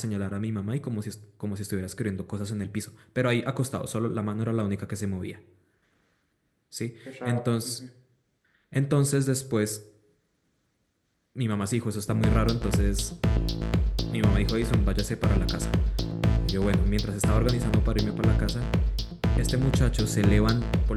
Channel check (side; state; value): both; identical; correlation 1.00